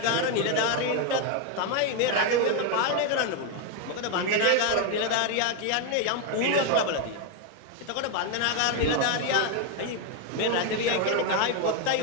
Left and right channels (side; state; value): both; different; correlation 0.01